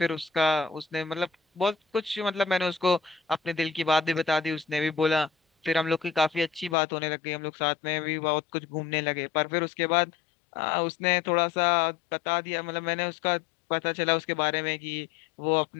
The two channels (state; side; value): drops out; right; at 6.8 s